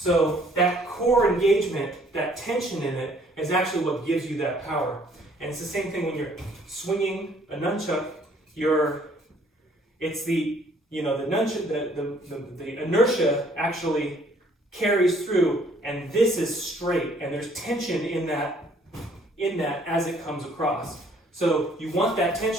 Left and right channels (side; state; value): both; normal; correlation 0.61